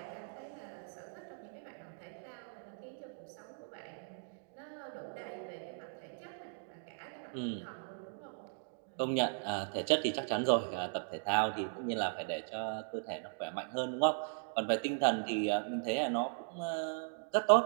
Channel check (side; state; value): left; silent; digital silence